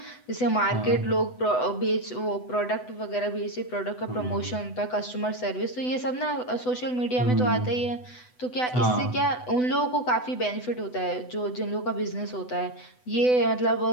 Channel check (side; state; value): right; late; 8.0 ms